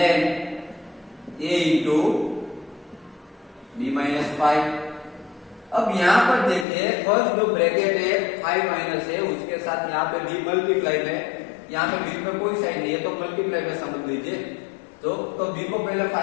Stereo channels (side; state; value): right; drops out; at 6.7 s